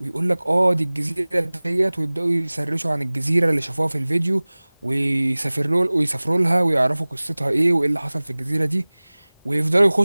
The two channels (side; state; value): both; inverted; correlation -1.00